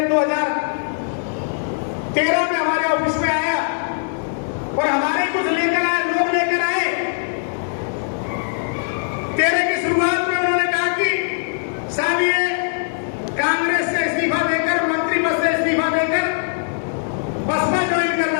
2013 में हमारे ऑफिस में आया और हमारे कुछ लेकर आए, लोग लेकर आए। 13 की शुरुआत में उन्होंने कहा कि साहब ये कांग्रेस से इस्तीफा देकर, मंत्री पद से इस्तीफा देकर बसपा ज्वाइन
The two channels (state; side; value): silent; right; 58 dB below the other